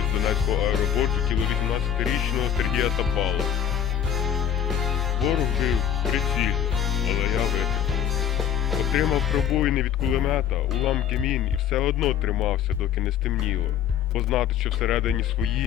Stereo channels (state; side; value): quieter; right; 9.4 dB